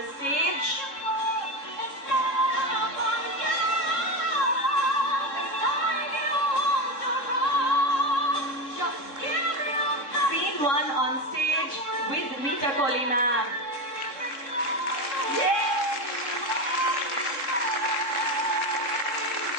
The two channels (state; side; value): late; right; 3.7 ms